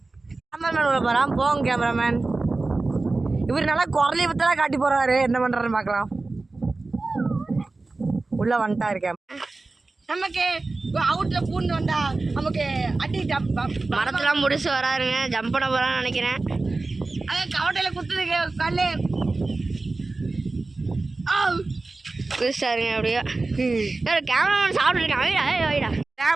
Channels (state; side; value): quieter; left; 3.4 dB